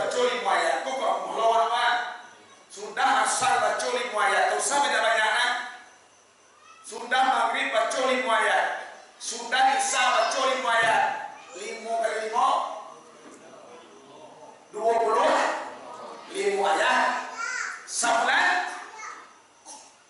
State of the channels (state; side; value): identical; both; correlation 1.00